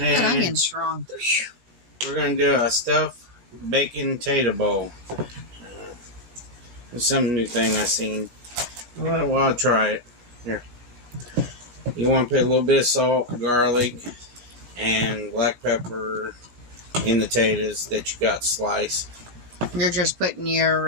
And onion's strong. we're going to do a stuffed bacon tater bowl. It's some new thing I seen. Well, I'll try it. Here. You want to put a little bit of salt, garlic, and black pepper in the taters that you got sliced. You're just putting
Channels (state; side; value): late; left; 17 ms